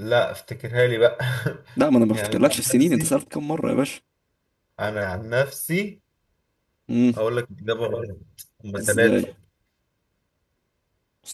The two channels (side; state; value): both; identical; correlation 1.00